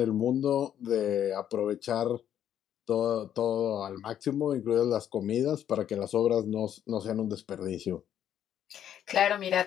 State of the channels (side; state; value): right; quieter; 10.2 dB